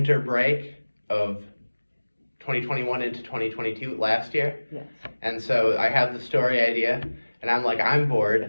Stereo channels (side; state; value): both; inverted; correlation -1.00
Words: break of 2021 into 2022 last year. Yes. And so I have the story idea, and I'm like, I'm